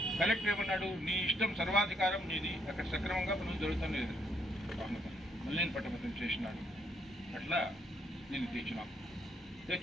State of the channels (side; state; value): both; normal; correlation 0.73